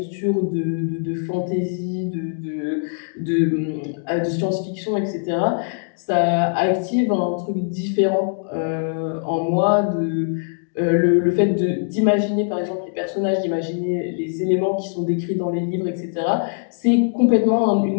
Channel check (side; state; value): right; silent; digital silence